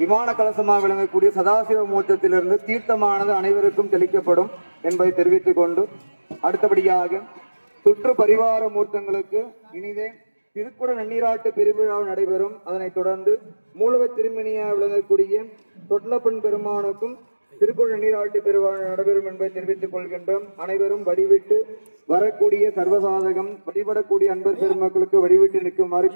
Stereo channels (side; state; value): both; inverted; correlation -1.00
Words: கலசமாக விளங்கக்கூடிய சதாசிவ மூர்த்தத்திலிருந்து தீர்த்தமானது அனைவருக்கும் தெளிக்கப்படும் என்பதை தெரிவித்துக் கொண்டு அடுத்தபடியாக சுற்று பரிவார மூர்த்தங்களுக்கு இனிதே திருக்குட நன்னீராட்டு பெருவிழா நடைபெறும். அதனைத் தொடர்ந்து மூலவ திருமணியாக விளங்கக்கூடிய தொட்லப்பன் பெருமானுக்கும் திருக்குட நன்னீராட்டு பெருவிழா நடைபெறும் என்பதை தெரிவித்துக் கொள்கின்றோம். அனைவரும் வழிவிட்டு வரக்கூடிய சர்வசாதகம் வழிபடக்கூடிய அன்பர் பெருமக்களுக்கு வழிவிட்டு நிற்குமாறு